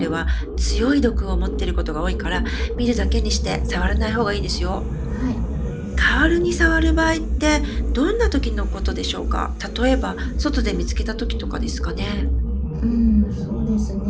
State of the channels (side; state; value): both; identical; correlation 1.00